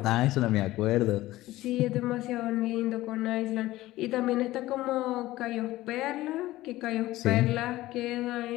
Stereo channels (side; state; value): right; quieter; 16.8 dB